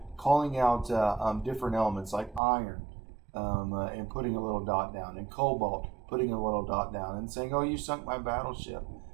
calling out different elements like iron and putting a little dot down, and cobalt, putting a little dot down, and saying, "Oh, you sunk my battleship."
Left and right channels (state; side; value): drops out; left; at 2.4 s